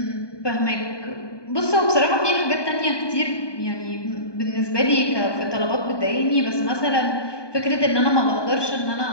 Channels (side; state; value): right; late; 1.2 ms